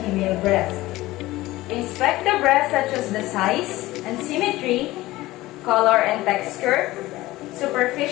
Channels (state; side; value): quieter; right; 17.9 dB